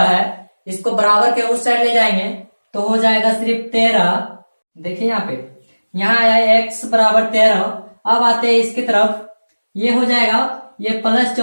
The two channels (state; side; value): inverted; both; correlation -1.00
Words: है, इसको बराबर के उस साइड ले जाएंगे तो हो जाएगा सिर्फ 13। देखिए यहाँ पे यहाँ आया है x बराबर 13, अब आते हैं इसकी तरफ, ये हो जाएगा ये प्लस